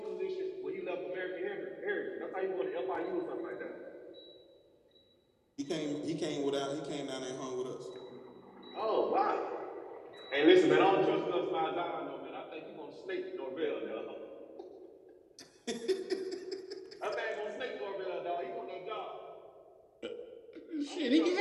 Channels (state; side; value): identical; both; correlation 1.00